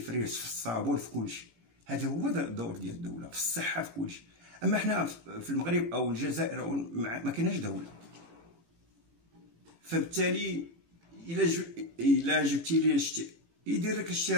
في الصابون، في كل شيء. هذا هو الدور ديال الدوله، في الصحه، في كل شيء. اما حنا في المغرب او الجزائر ما كايناش دوله، فبالتالي الا جبتي لي يدير لك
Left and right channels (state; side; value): late; left; 17 ms